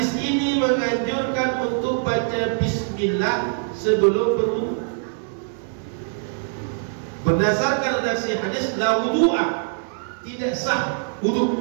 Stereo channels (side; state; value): left; silent; digital silence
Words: ini menganjurkan untuk baca bismillah sebelum berwudu. Berdasarkan redaksi hadis, la wudu'a, tidak sah